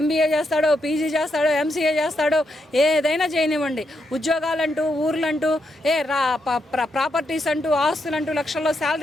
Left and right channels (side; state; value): both; normal; correlation 0.81